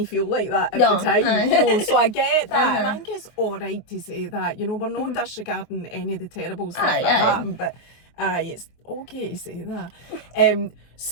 feel like that at the time. So I get that, and I think it's alright to say that, we're not disregarding any of the terrible stuff that happened, but it's okay to say that.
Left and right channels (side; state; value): right; late; 24 ms